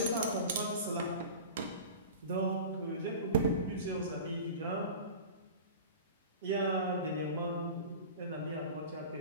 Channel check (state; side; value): inverted; both; correlation -0.35